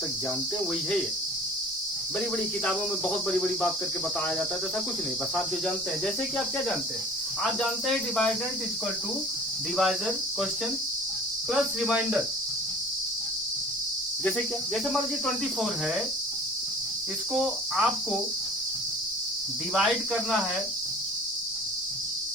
जानते हैं वही है ये। बड़ी बड़ी किताबों में बहुत बड़ी बड़ी बात करके बताया जाता है, तो ऐसा कुछ नहीं, बस आप जो जानते हैं। जैसे कि आप क्या जानते हैं, आप जानते हैं dividend is equal to divisor question plus remainder. जैसे क्या, जैसे मान लीजिए 24 है, इसको आपको डिवाइड करना है,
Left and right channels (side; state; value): both; normal; correlation 0.45